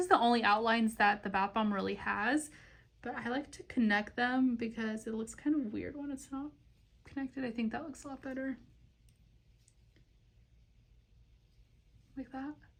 the only outlines that the bath bomb really has, but I like to connect them because it looks kind of weird when it's not connected. I think that looks a lot better. Like that.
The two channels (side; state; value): both; identical; correlation 1.00